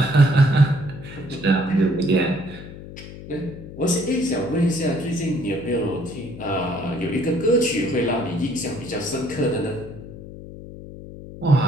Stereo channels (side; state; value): left; noise; hum, 14 dB below the sound